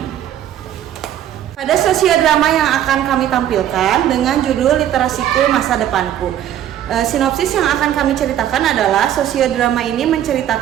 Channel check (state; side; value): quieter; left; 11.2 dB